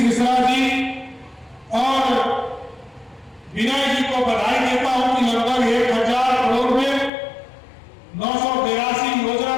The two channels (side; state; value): right; drops out; at 7.1 s